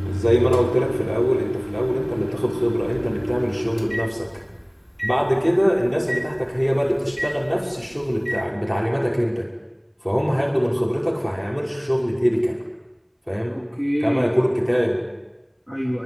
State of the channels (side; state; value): both; identical; correlation 1.00